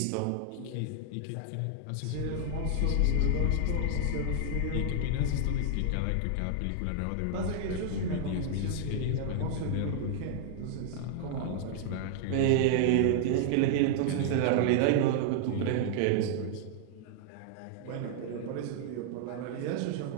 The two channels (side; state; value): both; different; correlation -0.01